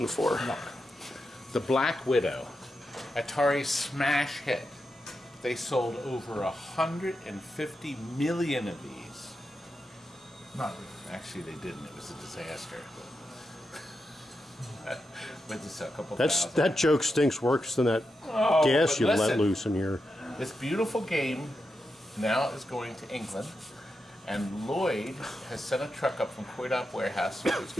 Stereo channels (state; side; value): normal; both; correlation 0.87